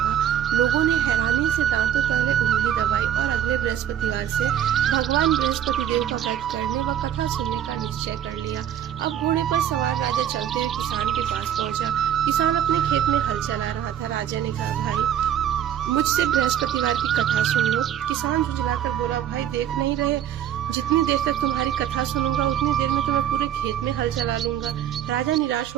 लोगों ने हैरानी से दांतों तले उंगली दबाई और अगले बृहस्पतिवार से भगवान बृहस्पति देव का व्रत करने व कथा सुनने का निश्चय कर लिया। अब घोड़े पर सवार राजा चलते हुए किसान के पास पहुंचा। किसान अपने खेत में हल चला रहा था। राजा ने कहा, भाई, मुझसे बृहस्पतिवार की कथा सुन लो। किसान झुझलाकर बोला, भाई, देख नहीं रहे, जितनी देर तक तुम्हारी कथा सुनूंगा उतनी देर में तुम्हें पूरे खेत में हल चला लूंगा। राजा निराश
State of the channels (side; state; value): left; quieter; 10.3 dB